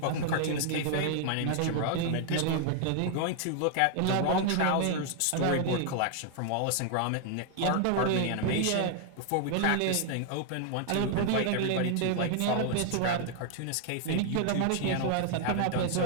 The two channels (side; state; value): both; different; correlation 0.00